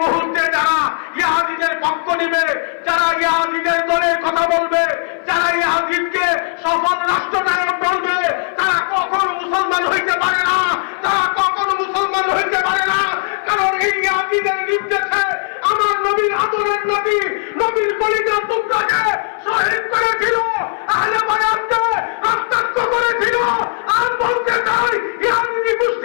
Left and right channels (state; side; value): silent; right; 59 dB below the other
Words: মুহূর্তে যারা ইয়াজিদের পক্ষ নিবে, যারা ইয়াজিদের দলের কথা বলবে, যারা ইয়াজিদকে সফল রাষ্ট্রনায়ক বলবে, তারা কখনো মুসলমান হইতে পারে না, তারা কখনো মুসলমান হইতে পারে না। কারণ এই ইয়াজিদের নির্দেশে আমার নবীর আদরের নবী, নবীর কলিজার টুকরাকে শহীদ করেছিল, আহলে বায়াতকে রক্তাক্ত করেছিল। আর বলতে চাই, ইয়াজিদি